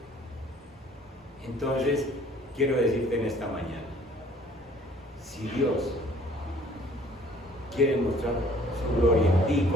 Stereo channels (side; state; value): both; normal; correlation 0.56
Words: Entonces quiero decirte en esta mañana, si Dios quiere mostrar su gloria en ti,